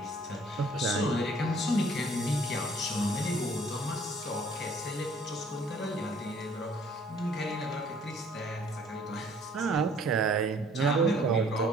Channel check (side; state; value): both; normal; correlation 0.57